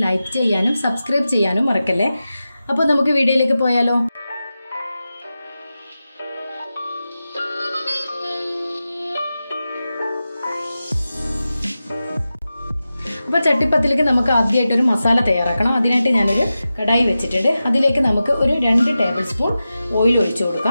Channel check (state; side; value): inverted; both; correlation -0.93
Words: ലൈക്ക് ചെയ്യാനും സബ്സ്ക്രൈബ് ചെയ്യാനും മറക്കല്ലേ. അപ്പോൾ നമുക്ക് വീഡിയോയിലേക്ക് പോയാലോ. അപ്പോൾ ചട്ടിപ്പത്തിലേക്ക് നമുക്ക് ആദ്യമായിട്ടൊരു മസാല തയ്യാറാക്കണം. അതിനായിട്ട് ഞാനൊരു കടായി വെച്ചിട്ടുണ്ട്. അതിലേക്ക് നമുക്ക് ഒരു 2 ടേബിൾ സ്പൂൺ ഓയിൽ ഒഴിച്ചു